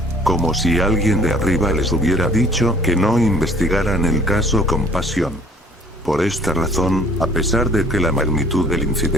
Como si alguien de arriba les hubiera dicho que no investigaran el caso con pasión. Por esta razón, a pesar de que la magnitud del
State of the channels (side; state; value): both; normal; correlation 0.54